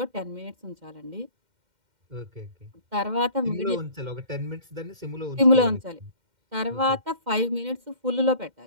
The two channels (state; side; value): late; left; 2.1 ms